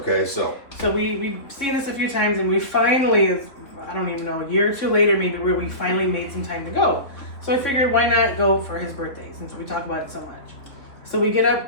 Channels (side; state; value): right; late; 3.7 ms